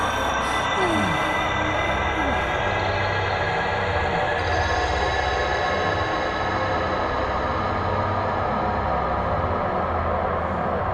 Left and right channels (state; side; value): identical; both; correlation 1.00